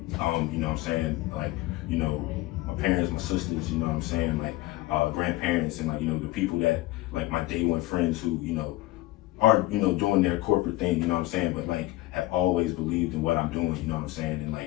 know what I'm saying? Like, you know, my parents, my sisters, you know what I'm saying? Like, grandparents, and like, you know, the people that, like, my day one friends who, you know, are, you know, doing their corporate thing, you know what I'm saying? But like, have always believed in what I'm doing, you know what I'm saying? And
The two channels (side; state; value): right; quieter; 18.0 dB